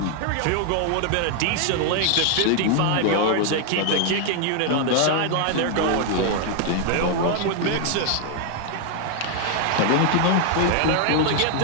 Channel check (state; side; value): different; both; correlation 0.00